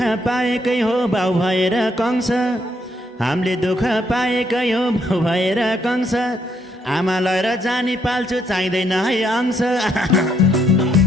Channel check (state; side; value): normal; both; correlation 0.73